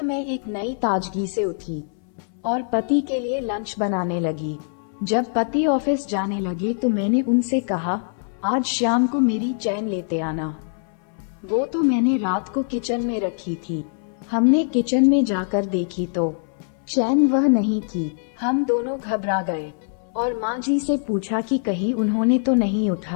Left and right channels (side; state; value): right; silent; 63 dB below the other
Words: मैं एक नई ताजगी से उठी और पति के लिए लंच बनाने लगी। जब पति ऑफिस जाने लगे तो मैंने उनसे कहा, आज शाम को मेरी चैन लेते आना। वो तो मैंने रात को किचन में रखी थी। हमने किचन में जाकर देखी तो चैन वह नहीं थी। हम दोनों घबरा गए और माँ जी से पूछा कि कहीं उन्होंने तो नहीं